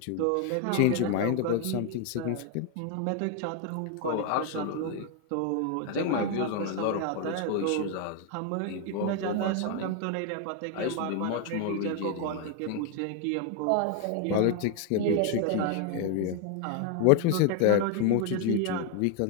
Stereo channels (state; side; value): different; both; correlation 0.01